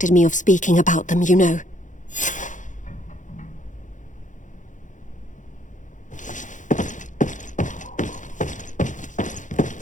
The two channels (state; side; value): late; right; 0.37 ms